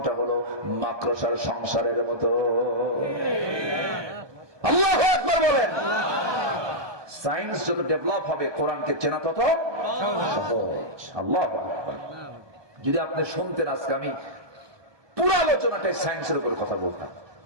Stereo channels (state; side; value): late; left; 1.2 ms